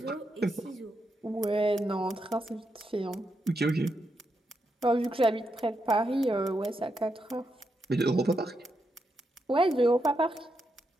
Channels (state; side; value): normal; both; correlation 0.83